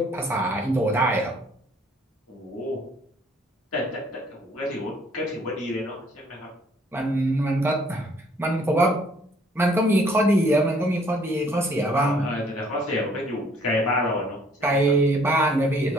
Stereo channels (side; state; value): both; normal; correlation 0.61